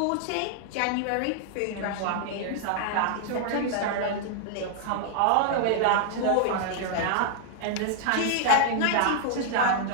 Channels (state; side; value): different; both; correlation -0.01